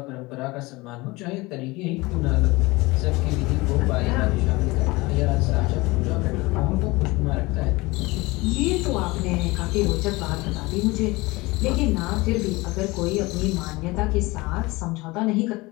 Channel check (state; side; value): quieter; right; 22.5 dB